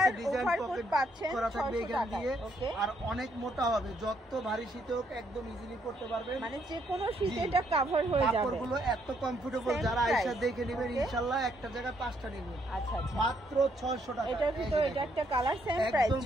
ওভারকোট পাচ্ছেন 600 টাকা। ওকে, আর অনেক মোটা হবে, যত ভারী শীত হোক একদম ইজিলি পড়তে পারবেন, মানে যে কোনো শীতে এটা কভার হয়ে যাবে। কাপড়গুলো এত কমফোর্টেবল, যারা আয়েশা দেখে নেবেন ইনশাআল্লাহ একটা জায়গায় 5টা নেবেন। আচ্ছা আচ্ছা, মাত্র 600 টাকা। এটার ভিতরে এটা একটা কালার, সেম প্রাইস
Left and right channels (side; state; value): both; normal; correlation 0.72